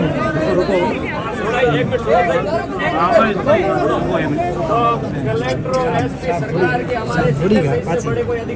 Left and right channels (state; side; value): identical; both; correlation 1.00